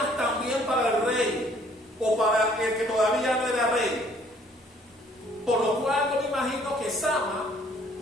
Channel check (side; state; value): both; normal; correlation 0.60